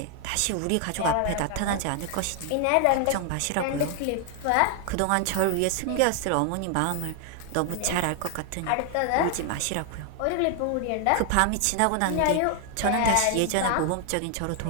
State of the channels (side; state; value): both; different; correlation 0.00